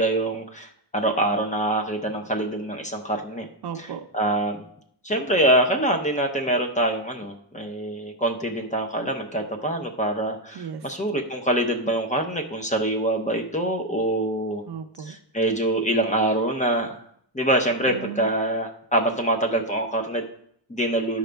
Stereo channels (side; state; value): both; normal; correlation 0.03